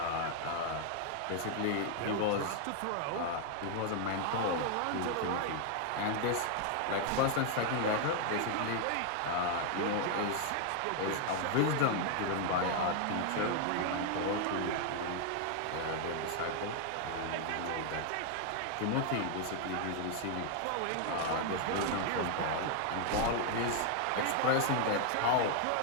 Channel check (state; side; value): different; both; correlation 0.00